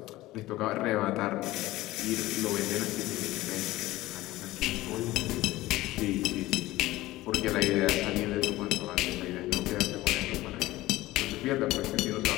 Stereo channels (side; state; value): right; quieter; 17.5 dB